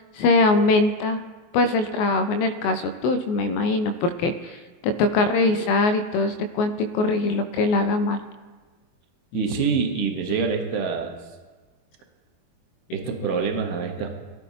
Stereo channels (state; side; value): late; right; 24 ms